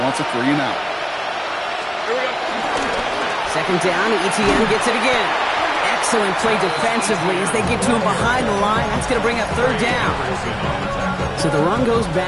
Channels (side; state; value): both; identical; correlation 1.00